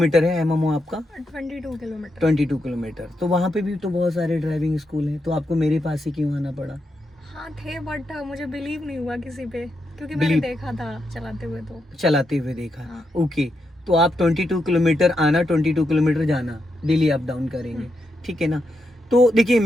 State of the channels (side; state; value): both; normal; correlation 0.84